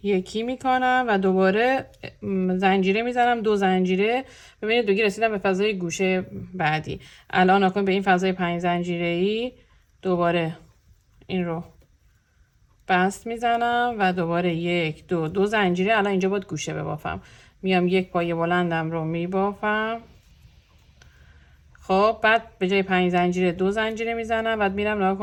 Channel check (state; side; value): identical; both; correlation 1.00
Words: یکی میکنم و دوباره زنجیره میزنم، 2 زنجیره. ببینید دیگه رسیدم به فضای گوشه بعدی. الان نکن به این فضای 5 زنجیره‌ای دوباره این رو بست میزنم و دوباره 1 2 زنجیره. الان اینجا باید گوشه ببافم، میام یک پایه بلندم رو میبافم. خب بعد به جای 5 زنجیره 2 زنجیره میزنم. بعد میرم نگاه